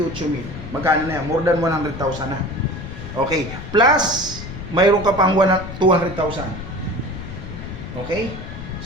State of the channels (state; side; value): noise; left; rumble, 10 dB below the sound